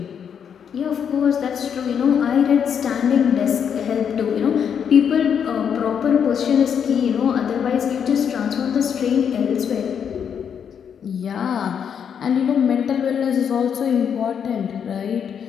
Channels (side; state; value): right; quieter; 7.7 dB